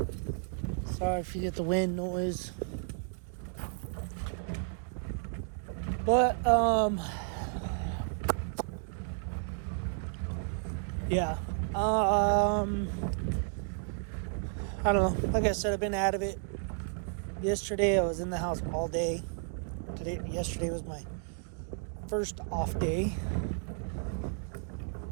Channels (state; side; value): silent; left; 56 dB below the other